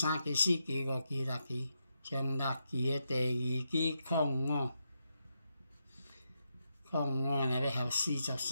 期、4期、5期、6期，上6期的第2期05若要合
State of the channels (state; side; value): inverted; both; correlation -0.84